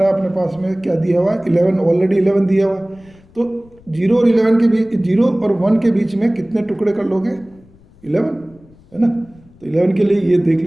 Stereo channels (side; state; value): left; noise; rumble, 27 dB below the sound